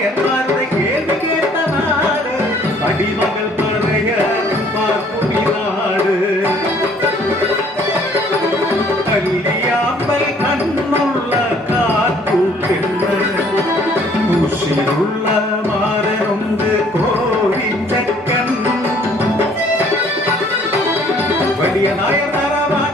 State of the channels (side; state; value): both; normal; correlation 0.59